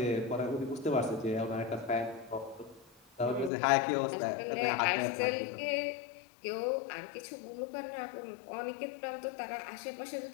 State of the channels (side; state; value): right; drops out; at 3.5 s